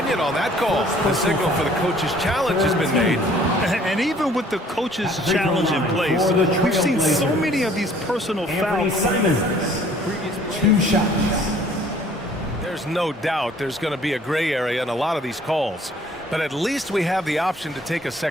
on that call. The signal for the coach's challenge has been made. And even with the coach's challenge in place, we've seen so many of these personal fouls. Simons, 2 shots. There's no doubt there's going to be a gray area in a lot of these calls. But at least we have the option to take a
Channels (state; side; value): normal; both; correlation 0.56